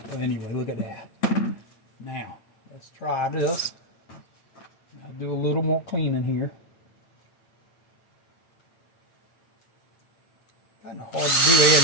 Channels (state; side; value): late; right; 8.9 ms